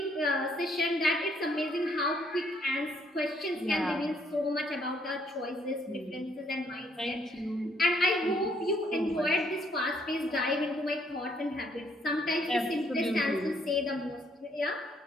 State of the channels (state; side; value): normal; both; correlation 0.69